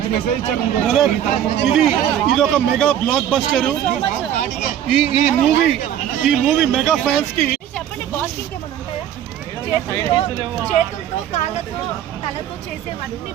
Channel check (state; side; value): quieter; left; 10.5 dB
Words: ఇది ఒక మెగా బ్లాక్ బస్టర్. ఈ మూవీ మెగా ఫ్యాన్స్ కి. చెప్పండి, బాస్ ఇంకేమైనా ఉంటాయా? చేతులతో కాళ్ళతో తలతో చేసేవన్నీ